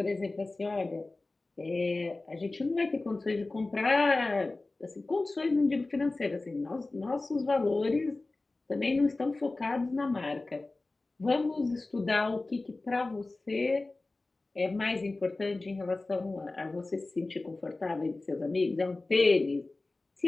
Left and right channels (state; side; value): quieter; right; 3.2 dB